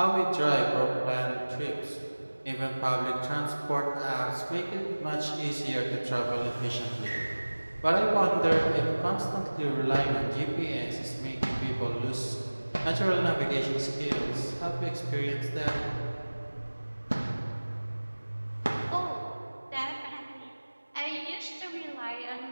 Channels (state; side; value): inverted; both; correlation -1.00